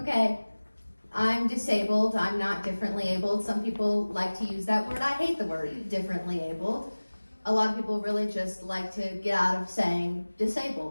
I'm disabled. I'm not differently abled. Some people like to use that word. I hate the word differently abled. A lot of people really just like to get out of saying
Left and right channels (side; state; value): both; inverted; correlation -1.00